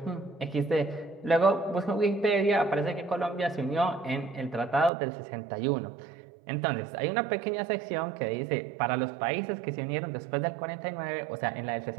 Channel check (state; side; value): drops out; left; at 4.9 s